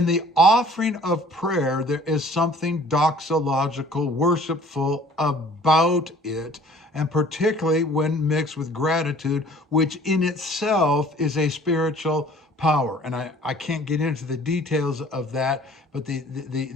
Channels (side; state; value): both; normal; correlation 0.52